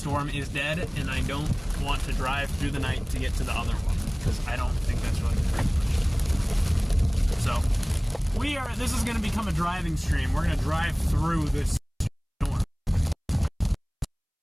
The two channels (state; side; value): identical; both; correlation 1.00